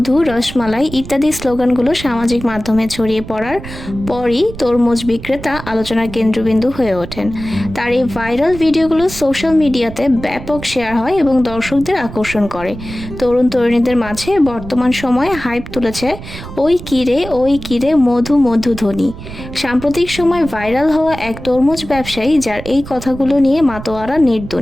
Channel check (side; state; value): right; noise; rumble, 12 dB below the sound